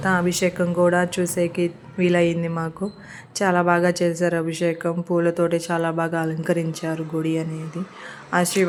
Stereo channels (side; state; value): both; identical; correlation 1.00